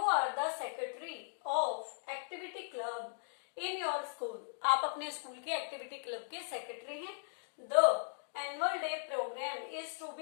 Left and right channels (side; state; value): right; silent; digital silence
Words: are the secretary of activity club in your school. आप अपने स्कूल के एक्टिविटी क्लब के सेक्रेटरी हैं। The annual day programme is to